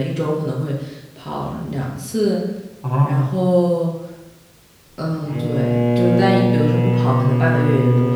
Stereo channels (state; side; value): identical; both; correlation 1.00